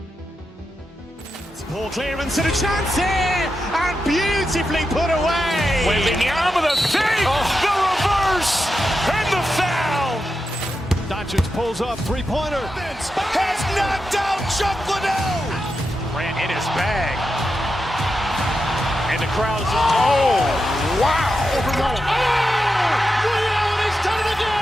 Ball clearance and a chance here, and beautifully put away. Waving the arm of the fake, the reverse, and the foul. Doncic pulls up, three-pointer. Has knocked out Chuck Liddell. Grant in his bag. And the crowd is, wow. He's done it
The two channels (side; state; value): both; normal; correlation 0.88